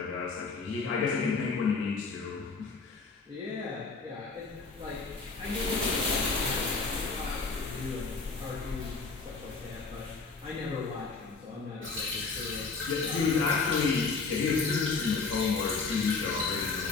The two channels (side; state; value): right; quieter; 4.4 dB